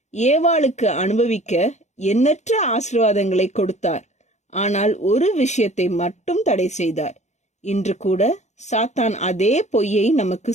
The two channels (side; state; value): right; late; 0.33 ms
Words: ஏவாளுக்கு அனுபவிக்க எண்ணற்ற ஆசீர்வாதங்களை கொடுத்தார். ஆனால் ஒரு விஷயத்தை மட்டும் தடை செய்தார். இன்று கூட சாத்தான் அதே பொய்யை நமக்கு